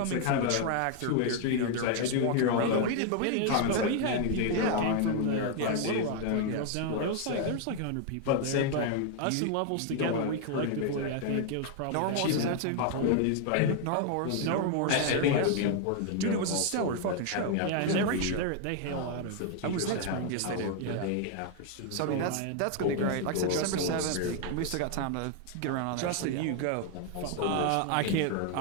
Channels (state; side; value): different; both; correlation 0.00